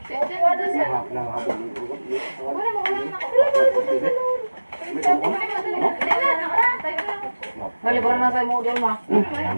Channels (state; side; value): inverted; both; correlation -1.00